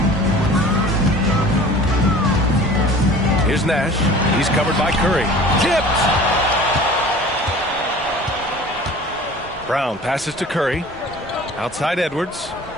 Here's Nash. He's covered by Curry. Tipped! Brown passes to Curry. Outside Edwards.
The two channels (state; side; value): normal; both; correlation 0.44